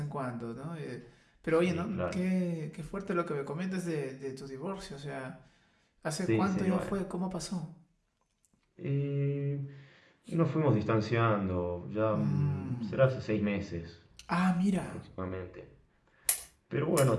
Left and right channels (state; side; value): identical; both; correlation 1.00